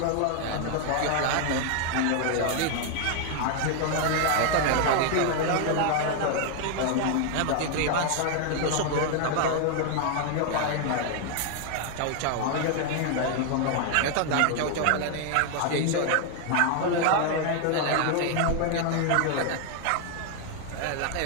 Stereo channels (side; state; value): both; different; correlation 0.00